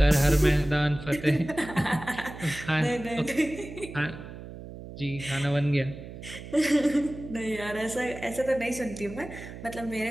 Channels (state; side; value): noise; right; hum, 13 dB below the sound